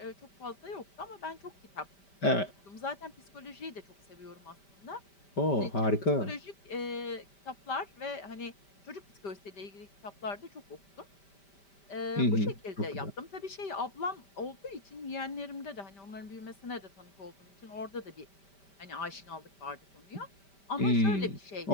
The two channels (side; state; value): right; late; 5.1 ms